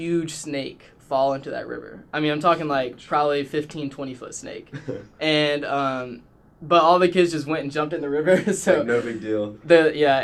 snake fall into that river. I mean, I'm talking like probably 15, 20-foot snake. And but all the kids just went and jumped in the river. So like, no big deal.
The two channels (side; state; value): both; identical; correlation 1.00